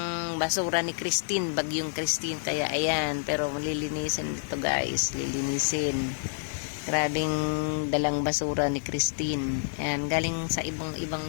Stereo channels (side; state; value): right; silent; digital silence